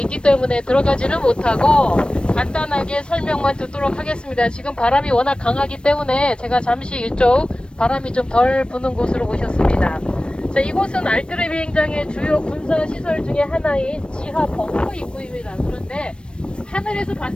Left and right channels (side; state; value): right; late; 0.056 ms